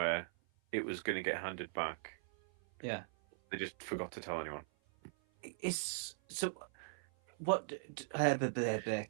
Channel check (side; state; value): left; silent; 51 dB below the other